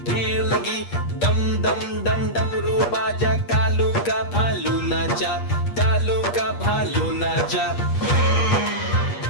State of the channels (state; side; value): late; right; 8.4 ms